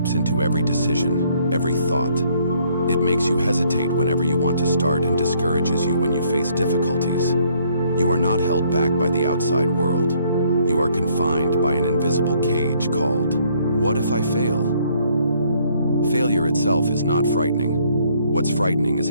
into every decision, every thought. It makes you hesitate whenever you want to start and discourages you when you face difficulties. You are not held back by the outside world. You are confined by an invisible cage called, "What if I fail?" Failure itself is not frightening. What's frightening is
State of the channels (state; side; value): inverted; both; correlation -0.65